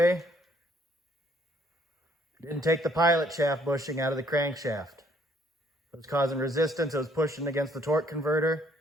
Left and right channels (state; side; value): normal; both; correlation 0.65